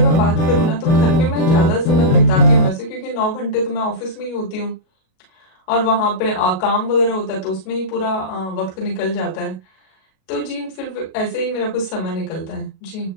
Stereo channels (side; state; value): right; late; 37 ms